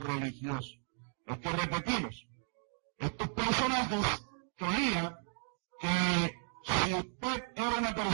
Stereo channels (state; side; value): silent; left; 54 dB below the other